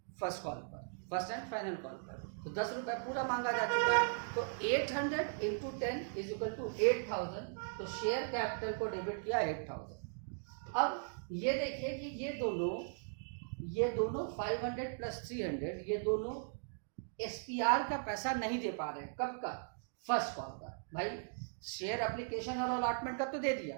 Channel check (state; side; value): silent; left; digital silence